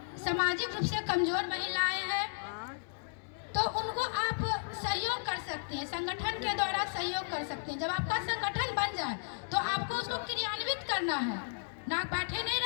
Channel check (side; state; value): right; silent; digital silence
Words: सामाजिक रूप से कमजोर महिलाएं हैं, तो उनको आप सहयोग कर सकते हैं, संगठन के द्वारा सहयोग कर सकते हैं। जब आपका संगठन बन जाए तो आपको उसको क्रियान्वित करना है, ना बैठे नहीं